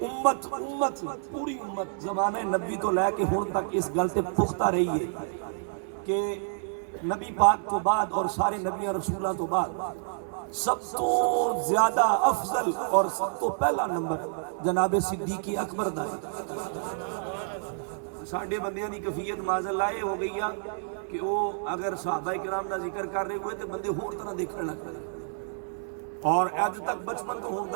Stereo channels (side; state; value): left; silent; digital silence